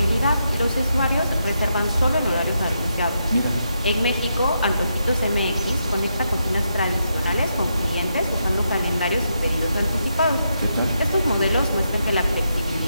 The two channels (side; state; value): both; inverted; correlation -0.82